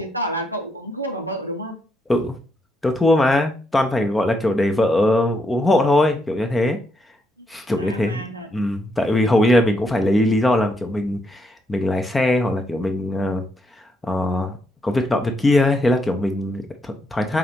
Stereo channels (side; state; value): both; normal; correlation 0.78